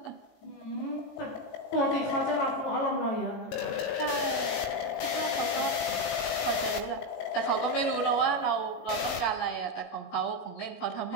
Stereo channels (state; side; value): late; right; 18 ms